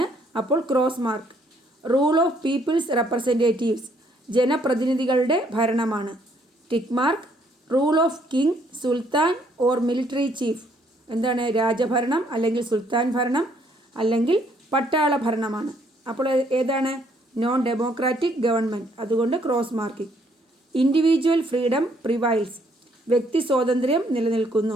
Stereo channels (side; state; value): both; normal; correlation 0.67